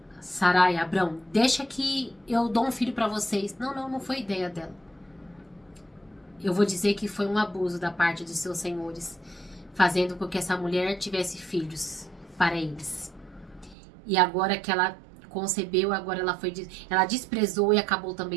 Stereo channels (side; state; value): left; drops out; at 13.8 s